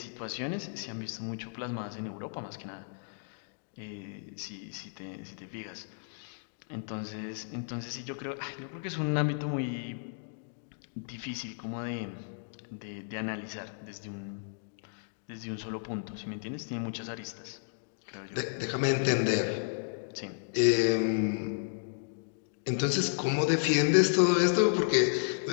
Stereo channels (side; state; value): right; silent; digital silence